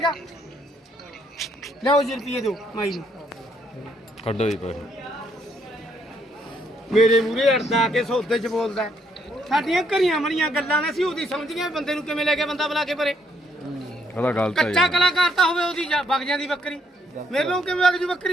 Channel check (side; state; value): both; normal; correlation 0.71